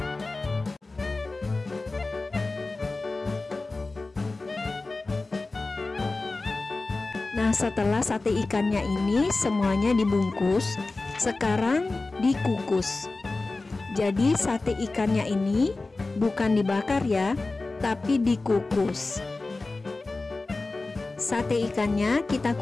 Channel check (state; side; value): quieter; right; 3.4 dB